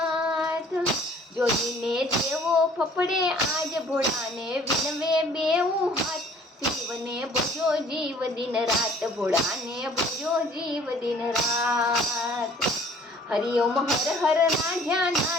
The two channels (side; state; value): both; normal; correlation 0.55